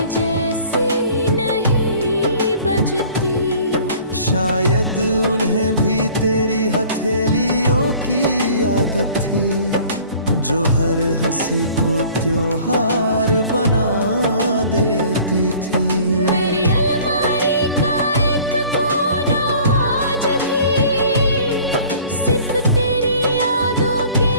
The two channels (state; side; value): inverted; both; correlation -0.50